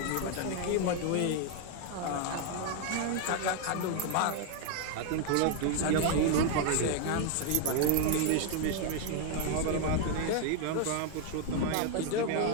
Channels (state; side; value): different; both; correlation 0.01